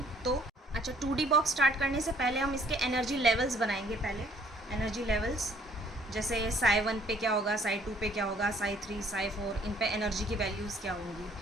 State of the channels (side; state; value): both; normal; correlation 0.60